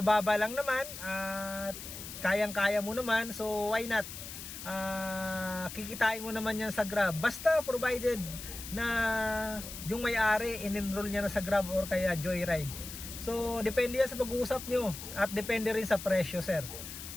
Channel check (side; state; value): left; noise; hiss, 10 dB below the sound